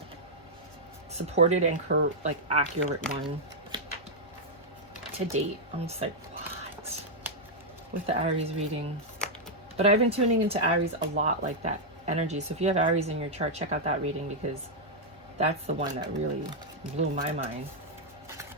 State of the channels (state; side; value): normal; both; correlation -0.05